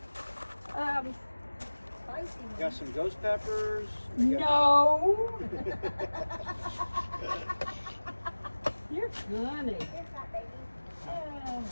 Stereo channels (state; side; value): inverted; both; correlation -1.00